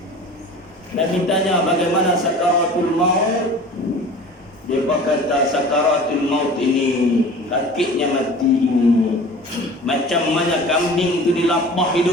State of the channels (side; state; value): both; normal; correlation 0.41